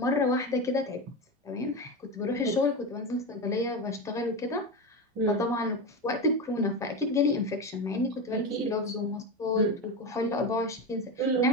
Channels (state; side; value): normal; both; correlation 0.19